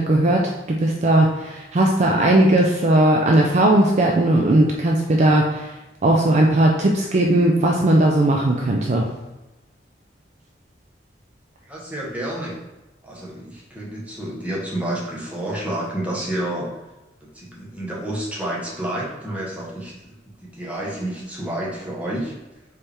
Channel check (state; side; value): normal; both; correlation 0.61